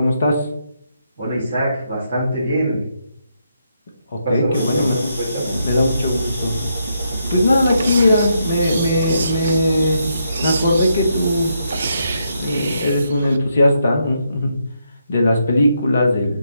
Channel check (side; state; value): both; inverted; correlation -0.79